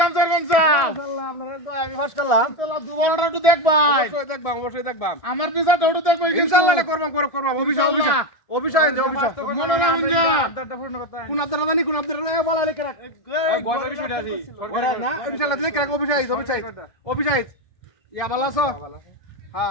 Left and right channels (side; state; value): right; late; 1.6 ms